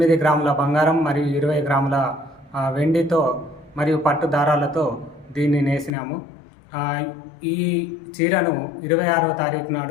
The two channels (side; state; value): right; drops out; at 5.9 s